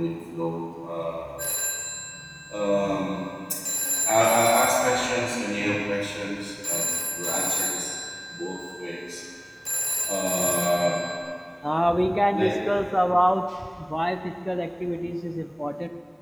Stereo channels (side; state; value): both; identical; correlation 1.00